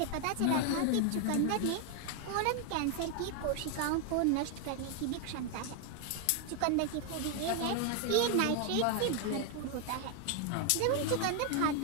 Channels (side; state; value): both; different; correlation 0.01